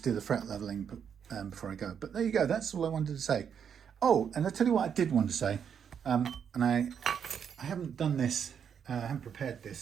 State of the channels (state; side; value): quieter; left; 7.7 dB